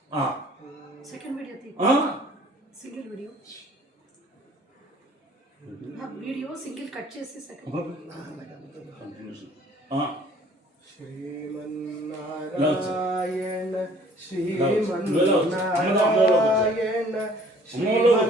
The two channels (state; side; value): normal; both; correlation 0.55